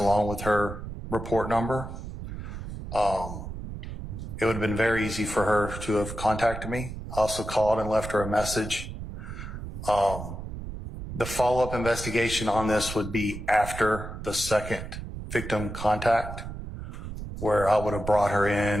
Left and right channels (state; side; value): noise; right; rumble, 9 dB below the sound